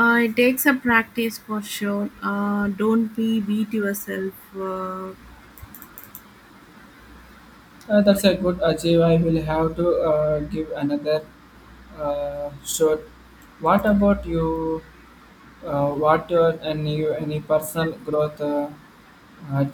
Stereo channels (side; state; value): both; identical; correlation 1.00